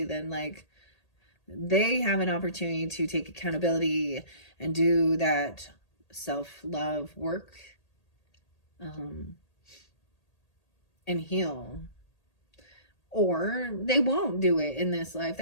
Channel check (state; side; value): late; right; 1.8 ms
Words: then, like, they have an opportunity to take accountability and do that self-love work, and heal. Or they won't do it in this life.